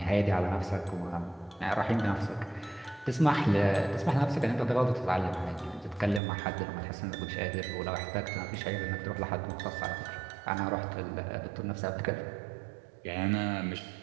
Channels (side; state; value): left; drops out; at 6.2 s